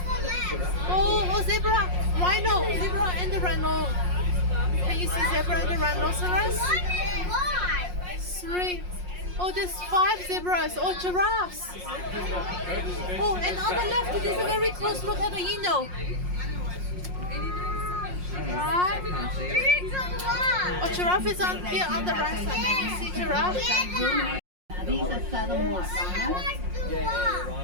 Oh, zebra, rhino, zebra and the rhino. Can you see zebra and the rhinoceros? 3. Oh, there's 5 zebras. Oh, giraffes. Oh, and on the left, there's a very close look at the Eno. Right? Oh, giraffe is on here on the right side. Can you see giraffe? These are southern white rhinos.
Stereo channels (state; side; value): late; left; 5.6 ms